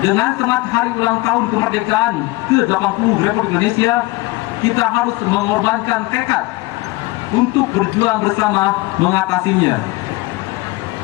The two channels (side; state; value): right; quieter; 21.3 dB